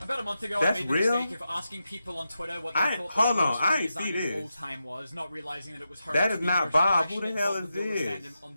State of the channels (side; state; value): both; inverted; correlation -0.88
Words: About a month ago, That's I made the real? mistake of asking people on Twitter what they thought the worst redesign of all time was, not realizing that it was That is not Bob. Who the hell is this? Fandom on